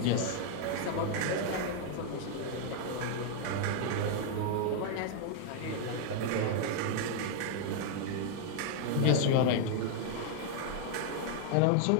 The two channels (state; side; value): different; both; correlation 0.00